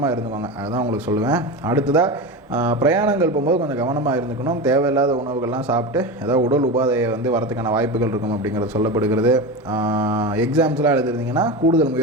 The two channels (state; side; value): normal; both; correlation 0.23